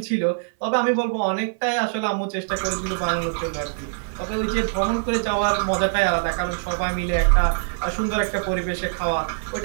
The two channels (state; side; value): silent; left; 57 dB below the other